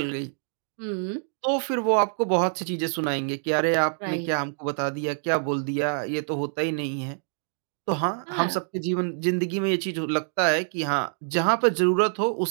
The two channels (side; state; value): left; silent; digital silence